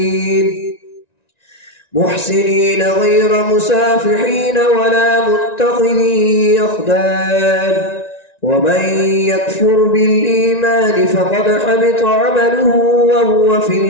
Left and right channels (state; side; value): late; right; 1.9 ms